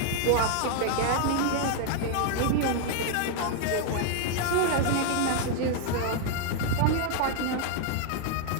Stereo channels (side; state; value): both; different; correlation 0.00